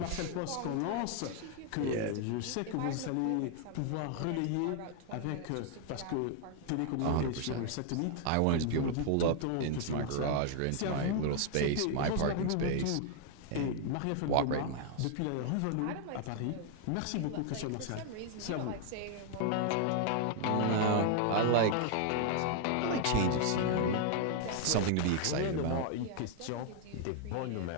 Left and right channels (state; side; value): different; both; correlation 0.00